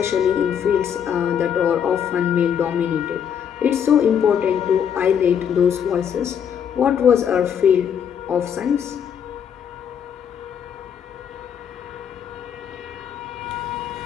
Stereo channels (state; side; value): quieter; right; 8.2 dB